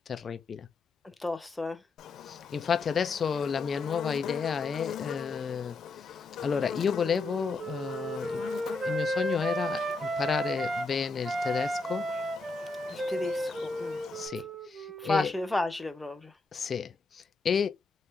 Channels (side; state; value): right; quieter; 3.7 dB